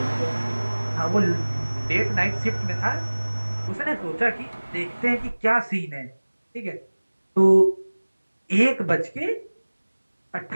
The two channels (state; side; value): inverted; both; correlation -1.00